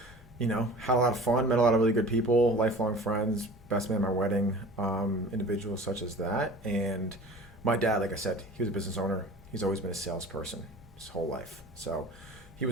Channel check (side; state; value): both; normal; correlation 0.41